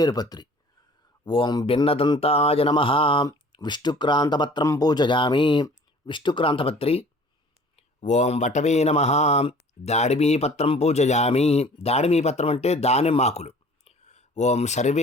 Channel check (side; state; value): both; normal; correlation 0.49